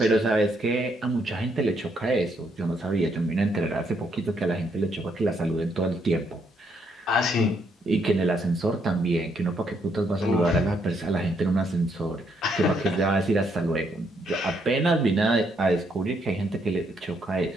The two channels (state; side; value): normal; both; correlation 0.74